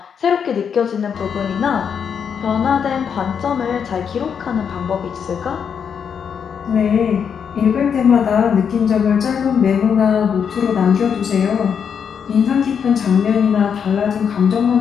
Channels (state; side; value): quieter; right; 7.2 dB